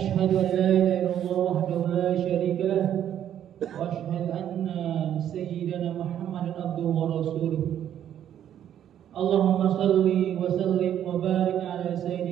an la ilaha illallah wahdahu la syarika lah wa ashhadu anna sayyidana Muhammadan abduhu wa rasuluh. Allahumma salli wa sallim wa barik ala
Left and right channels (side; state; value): left; quieter; 10.3 dB